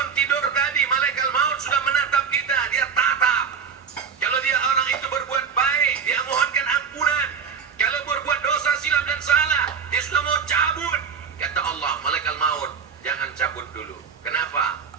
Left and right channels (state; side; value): quieter; left; 6.5 dB